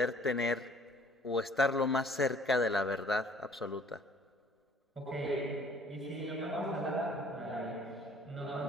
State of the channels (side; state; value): both; normal; correlation 0.55